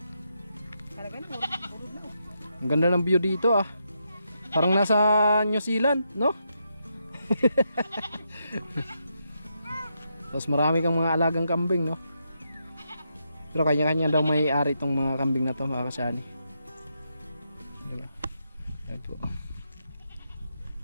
Talaga na, burun na. Ang ganda ng view dito ah. Parang nasa New Zealand, no? Tapos marami kang mga alagang kambing, no? Pero kanya-kanya daw may ari itong mga kambing na to, mga kasani. Diba? Ayan po.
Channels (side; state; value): both; inverted; correlation -0.82